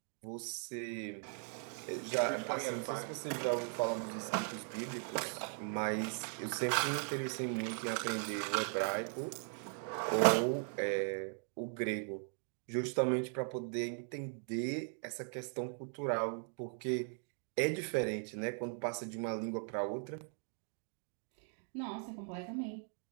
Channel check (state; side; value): silent; left; 52 dB below the other